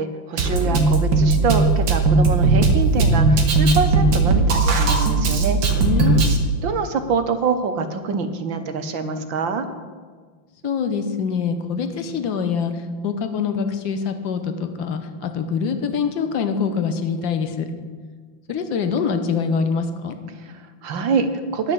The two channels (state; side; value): late; left; 5.8 ms